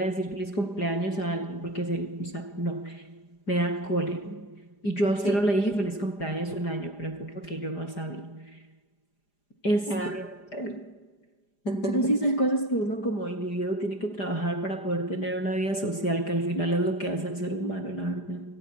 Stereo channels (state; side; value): late; right; 4.9 ms